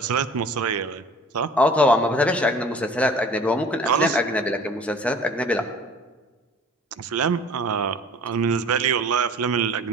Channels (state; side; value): normal; both; correlation 0.46